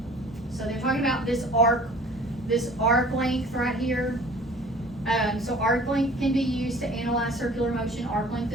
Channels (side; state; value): both; normal; correlation 0.48